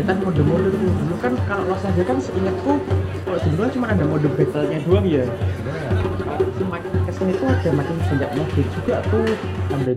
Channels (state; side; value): identical; both; correlation 1.00